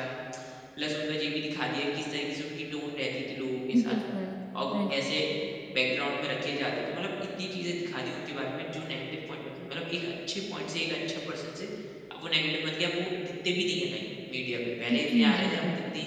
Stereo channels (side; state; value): both; identical; correlation 1.00